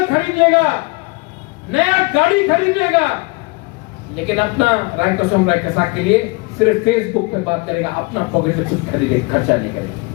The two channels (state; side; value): quieter; right; 27.2 dB